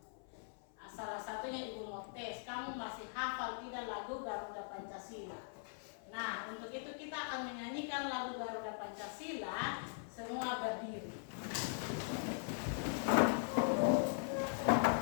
Salah satunya Ibu mau tes, kamu masih hafal tidak lagu Garuda Pancasila? Nah, untuk itu kita akan menyanyikan lagu Garuda Pancasila. Semua berdiri.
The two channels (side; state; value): right; silent; 50 dB below the other